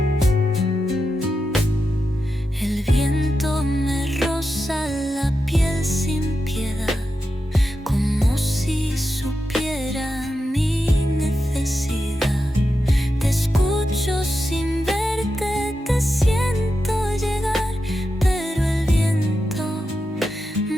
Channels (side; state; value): both; normal; correlation 0.89